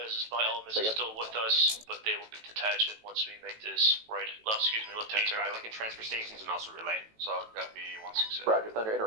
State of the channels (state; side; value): late; left; 18 ms